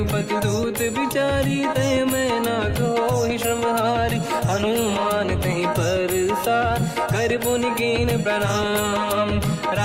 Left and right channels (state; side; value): identical; both; correlation 1.00